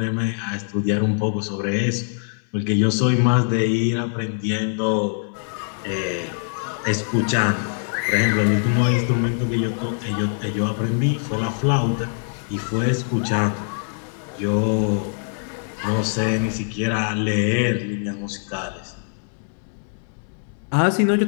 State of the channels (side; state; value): right; silent; digital silence